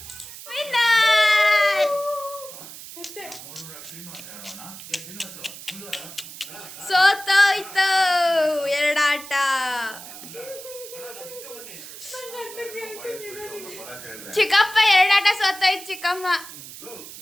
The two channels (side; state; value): right; noise; hiss, 14 dB below the sound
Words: ಸೋತೋಯ್ತು ಎರಡಾಟ. ಚಿಕ್ಕಪ್ಪ ಎರಡಾಟ ಸೋತೋಯ್ತು ಚಿಕ್ಕಮ್ಮ.